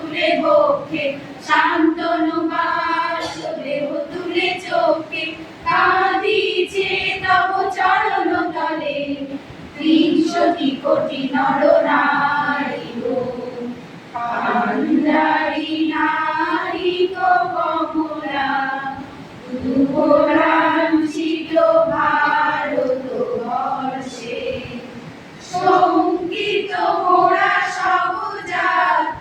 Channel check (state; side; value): identical; both; correlation 1.00